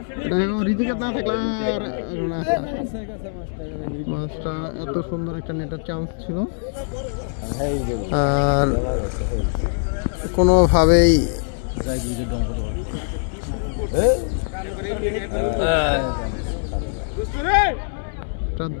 রিজিকে না থাকলে মাছটা এত সুন্দর একটা নেটার চান্স ছিল আর কোনোভাবেই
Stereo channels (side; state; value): right; silent; digital silence